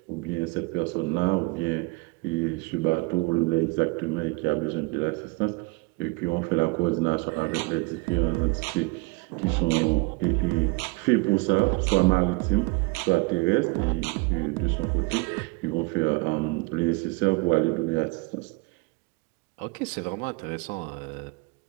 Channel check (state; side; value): quieter; left; 26.6 dB